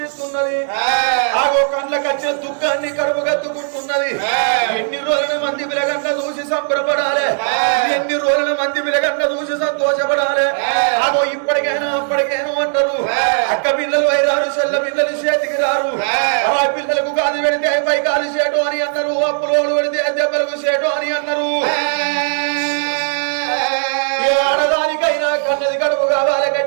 కండ్లకొచ్చే దుఃఖాన్ని కడుపు కత్తుకుంటున్నది ఎన్ని రోజుల మంది పిలగంట చూసి సంబరపడాలి ఎన్ని రోజుల మంది పిలగంట చూసి సంతోషపడాలి అగో ఇప్పటికైనా అప్పటికైనా అంటారు అక్క పిల్లలు వైరారు చెల్ల పిల్లలు చేతికి రారు అలా పిల్లలకు గాలి పెడితే పై కాలు చేటు అని అన్నారు అప్పులోడు పెడితే దెబ్బలకు చేటు అని అన్నారు ఆడదానికైనా కన్నది కడుపు కావాలి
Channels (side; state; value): left; silent; digital silence